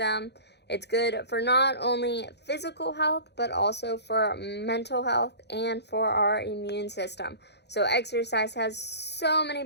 It's good for not only physical health, but also for mental health and for our immune system. So exercise has so many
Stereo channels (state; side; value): late; right; 0.49 ms